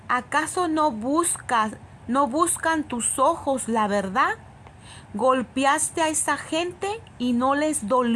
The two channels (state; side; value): identical; both; correlation 1.00